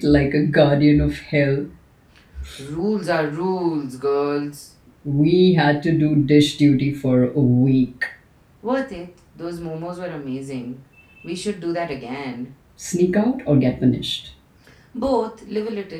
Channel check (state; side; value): identical; both; correlation 1.00